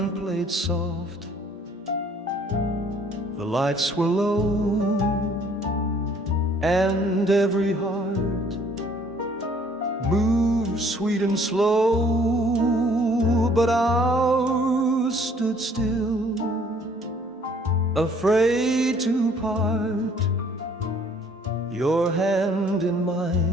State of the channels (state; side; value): normal; both; correlation 0.59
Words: played soft, the lights were low, and every heart moved sweet and slow. But ours stood still, afraid to part. Your hand in